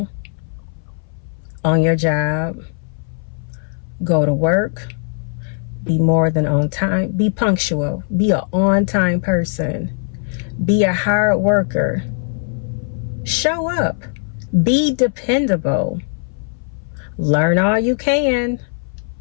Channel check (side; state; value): right; silent; 61 dB below the other